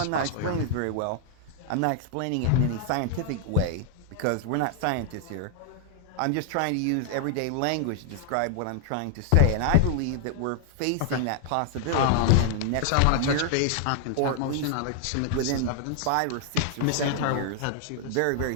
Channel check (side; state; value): both; different; correlation 0.00